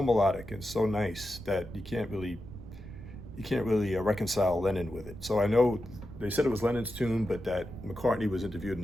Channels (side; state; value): right; noise; rumble, 13 dB below the sound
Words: melodic and so nice that you can't really reconcile Lennon with it. So I know they said it was Lennon's tune, but that McCartney was interviewed and